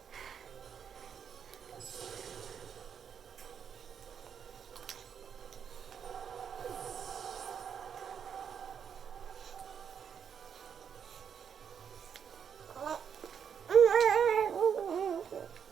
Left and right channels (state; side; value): quieter; left; 7.6 dB